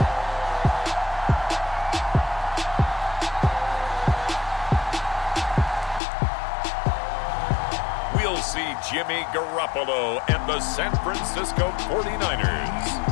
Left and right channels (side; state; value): right; drops out; at 6.0 s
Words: We'll see Jimmy Garoppolo and the San Francisco 49ers